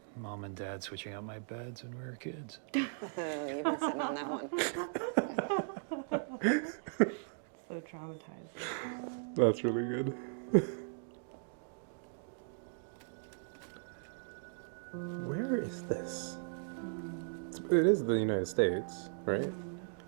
Mom and Dad switching out my beds when we were kids. You've been sitting on that one. So traumatizing. That's really good. Where is this? It is the United States, right?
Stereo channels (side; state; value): left; silent; digital silence